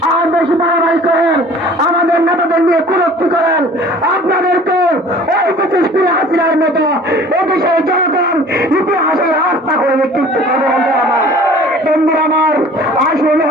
আর বেশি বাড়াবাড়ি করেন, আমাদের নেতাদের নিয়ে কুরুক্তি করেন, আপনাদেরকে ওই 25 দিনে হাসিনার মতো এদেশের জনগণ ইতিহাসের রাস্তা করে নিক্ষিপ্ত করবে। বন্ধুরা আমার, বন্ধুরা আমার, আসল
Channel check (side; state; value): both; normal; correlation 0.48